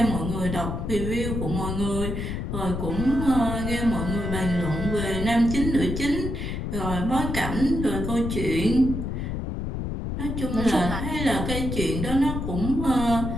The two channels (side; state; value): left; noise; rumble, 3 dB below the sound